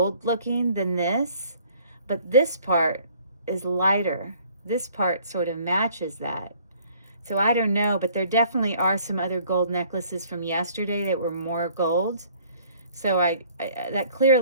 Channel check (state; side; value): inverted; both; correlation -0.57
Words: looking than this, but this part is lighter. This part sort of matches that. So I don't know, but there definitely are some other gold necklaces from yesterday that were more gold. So that